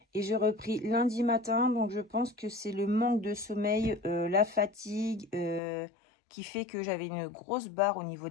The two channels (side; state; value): right; drops out; at 5.6 s